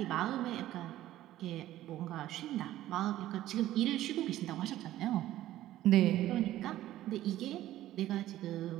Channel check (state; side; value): quieter; left; 14.2 dB